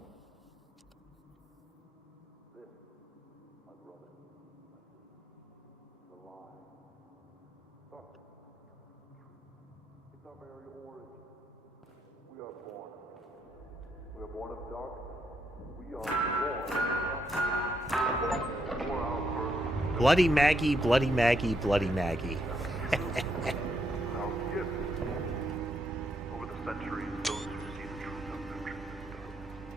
Bloody Maggie, Bloody Maggie, Bloody Maggie. Over the centuries, those who see the truth of their truth is done,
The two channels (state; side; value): normal; both; correlation 0.77